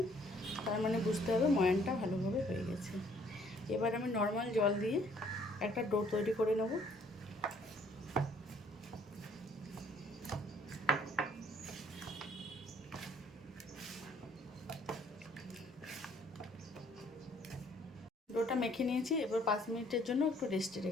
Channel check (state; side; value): normal; both; correlation 0.62